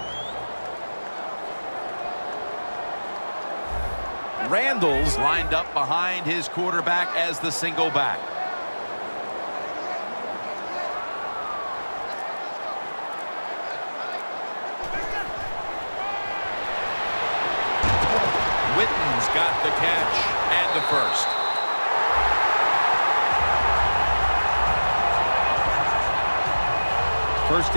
Randall's lined up behind his quarterback as the single back. Witten's got the catch and the first. First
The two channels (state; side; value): inverted; both; correlation -1.00